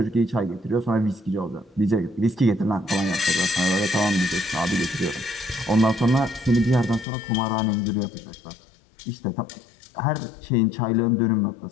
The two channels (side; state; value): right; drops out; at 7.1 s